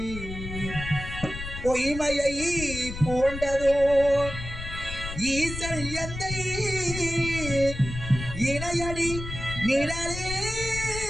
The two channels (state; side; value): noise; left; rumble, 8 dB below the sound